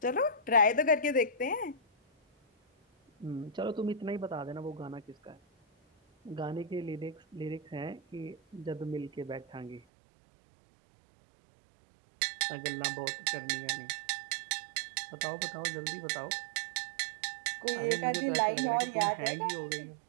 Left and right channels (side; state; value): left; drops out; at 9.8 s